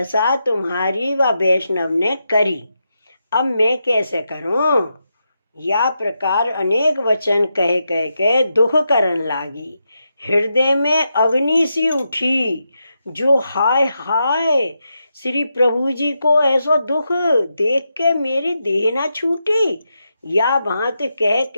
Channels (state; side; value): inverted; both; correlation -0.86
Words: तुम्हारी व वैष्णव ने करी। अब मैं कैसे करूं। या प्रकार अनेक वचन कह कह के दुख करन लागी। हृदय में अग्नि सी उठी, जो हाय हाय श्री प्रभु जी को ऐसा दुख देख के मेरी देह ना छूटी। या भांत कह